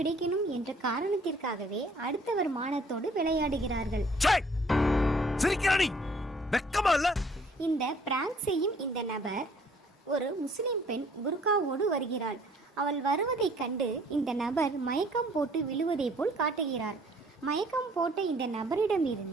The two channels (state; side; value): normal; both; correlation 0.59